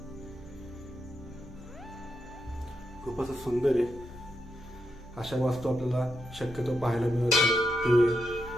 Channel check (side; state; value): both; normal; correlation 0.84